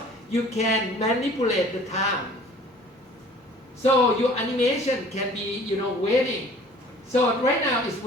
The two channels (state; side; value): normal; both; correlation 0.50